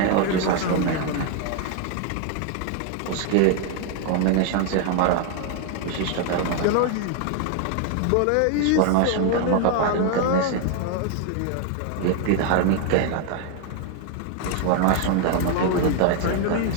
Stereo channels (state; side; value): different; both; correlation 0.00